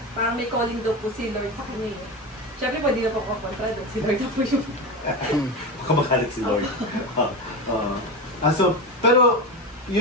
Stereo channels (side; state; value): both; normal; correlation 0.21